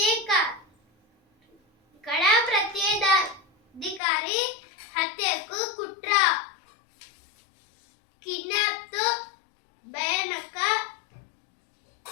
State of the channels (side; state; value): right; drops out; at 4.0 s